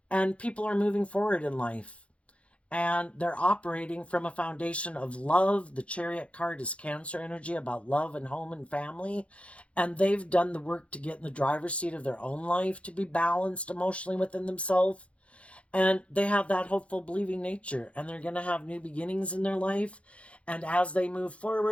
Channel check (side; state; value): right; late; 0.062 ms